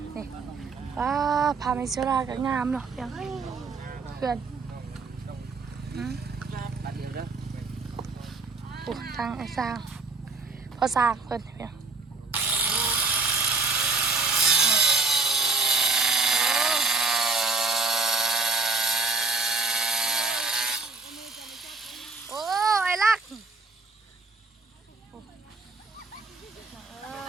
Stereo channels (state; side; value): quieter; left; 3.9 dB